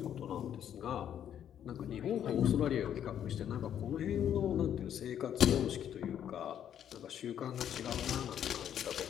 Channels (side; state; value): right; quieter; 9.8 dB